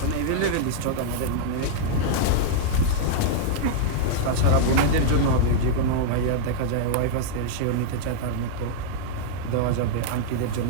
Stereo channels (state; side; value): different; both; correlation -0.01